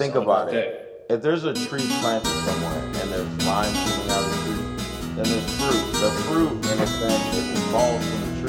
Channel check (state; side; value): identical; both; correlation 1.00